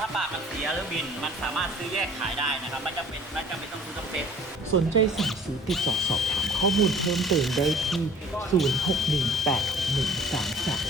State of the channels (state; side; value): normal; both; correlation 0.50